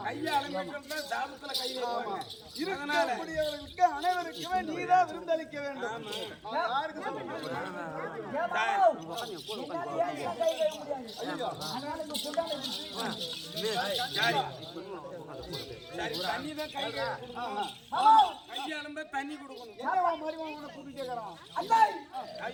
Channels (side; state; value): both; identical; correlation 1.00